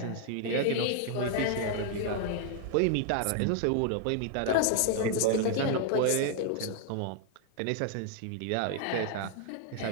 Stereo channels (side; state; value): both; different; correlation 0.00